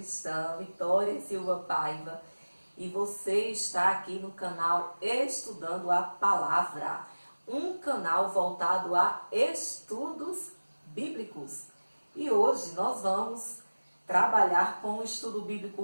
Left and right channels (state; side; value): inverted; both; correlation -1.00